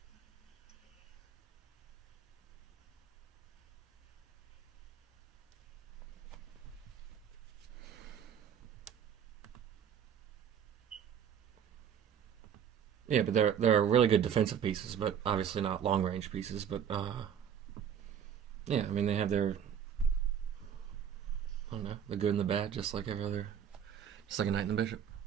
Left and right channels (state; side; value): quieter; left; 8.5 dB